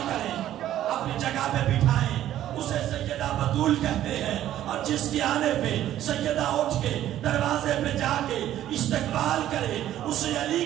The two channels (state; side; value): quieter; left; 12.4 dB